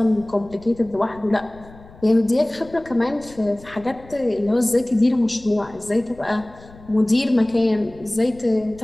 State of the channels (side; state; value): left; noise; rumble, 22 dB below the sound